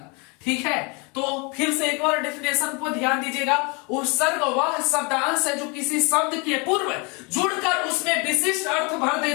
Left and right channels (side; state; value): right; quieter; 30.7 dB